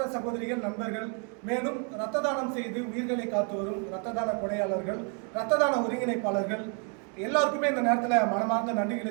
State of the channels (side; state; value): left; quieter; 39.6 dB